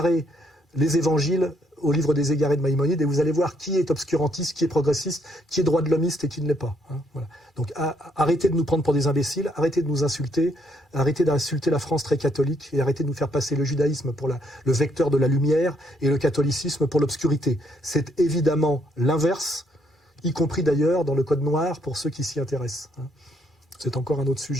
les évangiles au livre des égarés de Maïmonide et vous allez voir qui est obscurantiste, qui est progressiste, qui est droit de l'hommiste et qui ne l'est pas. Hein. Voilà. Donc arrêtez de nous prendre pour des imbéciles, arrêtez de nous insulter, arrêtez d'insulter la France très catholique et arrêtez de nous faire passer le judaïsme pour le vecteur de la lumière et le catholicisme pour l'obscurité. C'est évidemment l'inverse, y compris d'ailleurs dans le Code noir pour ceux qui s'y intéressent. C'est encore un autre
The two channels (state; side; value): normal; both; correlation 0.71